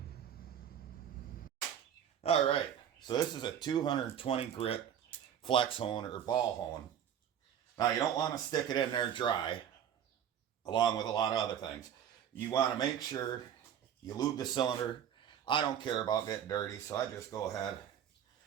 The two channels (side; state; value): left; quieter; 9.3 dB